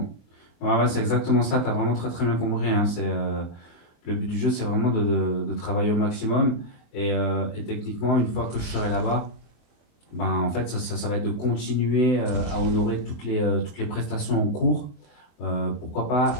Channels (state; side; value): late; right; 24 ms